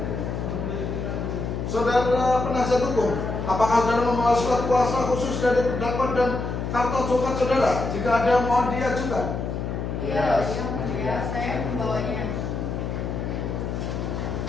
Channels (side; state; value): left; noise; hum, 4 dB below the sound